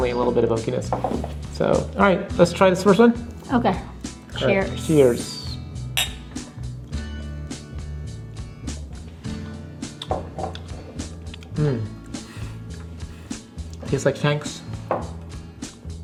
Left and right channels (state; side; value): identical; both; correlation 1.00